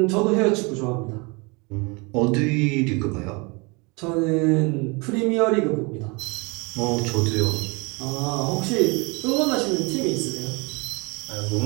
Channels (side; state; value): left; quieter; 28.8 dB